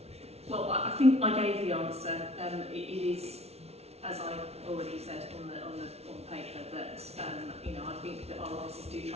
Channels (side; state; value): left; late; 0.31 ms